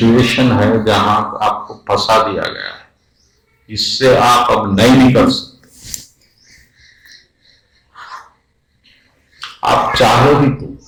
है जहां आपको फंसा दिया गया है, इससे आप अब नहीं निकल सकते। आप चाहो भी तो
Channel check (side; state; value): both; identical; correlation 1.00